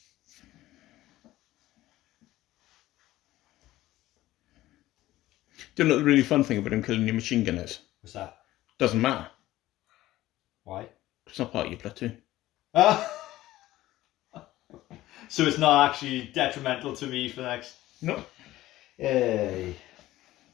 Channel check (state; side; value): quieter; right; 15.9 dB